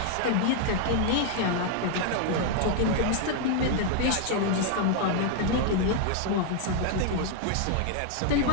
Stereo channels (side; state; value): both; different; correlation 0.00